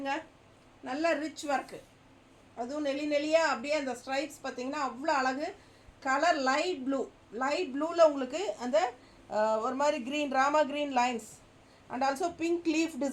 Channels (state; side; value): identical; both; correlation 1.00